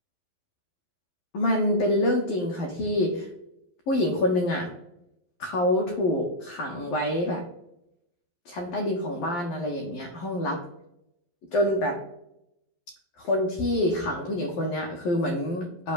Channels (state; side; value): late; right; 11 ms